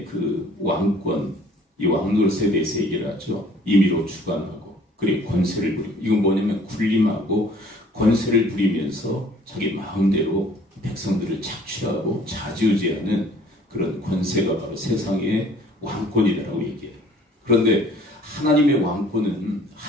그 왕권, 이 왕노릇에 대해서 얘기를 하죠. 임의로 주관하고 그리고 권세를 부리고. 이건 뭐냐면 군림하고 권세를 부리면서 자기 마음대로 백성들을 착취하고 좌지우지하는 그런 권세가 바로 세상의 왕권이라고 얘기해요. 그런데 하나님의 왕권은,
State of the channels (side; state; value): both; normal; correlation 0.55